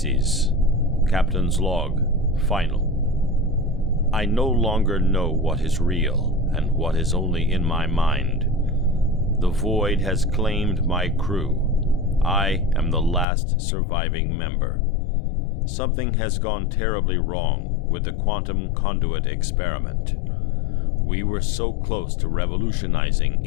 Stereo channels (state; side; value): drops out; right; at 13.2 s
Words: Captain's Log. Final. I no longer know what is real and what is only in my mind. The void has claimed my crew. I am the last surviving member. Something has gone terribly wrong with the quantum conduit experiment. We were so close to revolutionizing